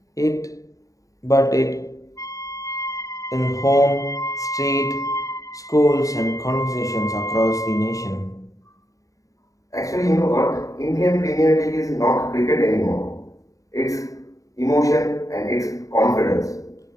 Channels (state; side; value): late; right; 0.16 ms